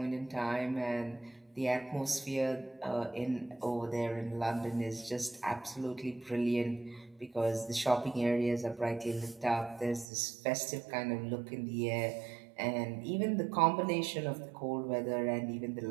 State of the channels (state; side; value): drops out; left; at 10.1 s